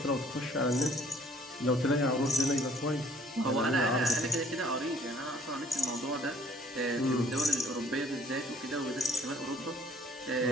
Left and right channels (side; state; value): both; normal; correlation 0.58